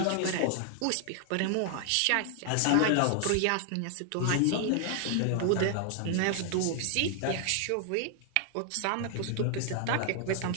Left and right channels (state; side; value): different; both; correlation 0.00